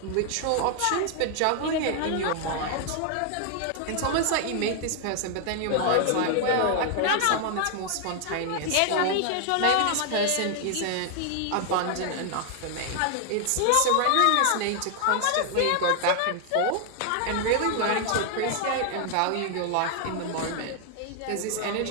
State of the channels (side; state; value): both; different; correlation 0.00